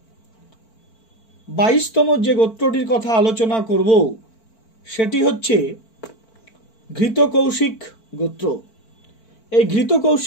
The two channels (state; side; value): late; right; 4.5 ms